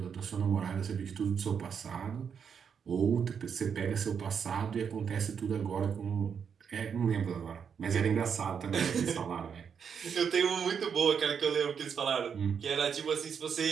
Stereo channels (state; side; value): quieter; left; 7.0 dB